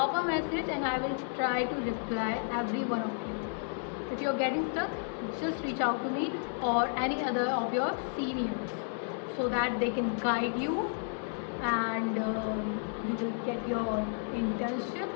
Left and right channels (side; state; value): right; silent; 56 dB below the other